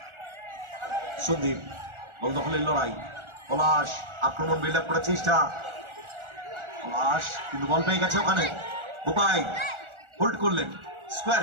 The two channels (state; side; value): late; left; 1.4 ms